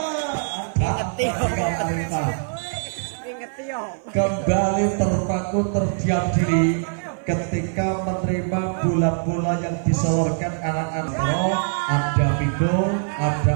Kembali terpaku terdiam diri ketika menerima bola-bola yang diseluruhkan anak-anak. Ada Vigo, ada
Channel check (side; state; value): left; silent; 56 dB below the other